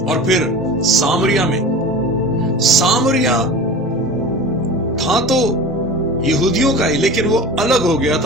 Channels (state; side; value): normal; both; correlation 0.34